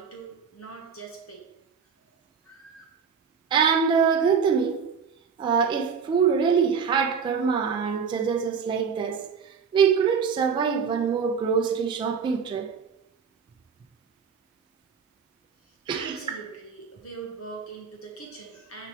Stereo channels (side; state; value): left; quieter; 6.2 dB